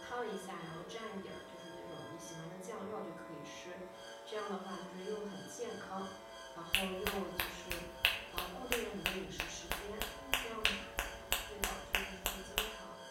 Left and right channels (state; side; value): identical; both; correlation 1.00